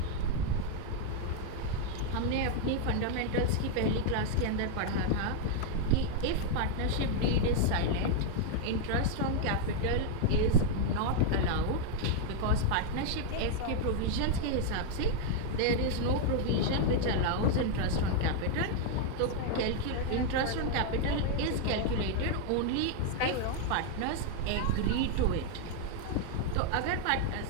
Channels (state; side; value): different; both; correlation 0.00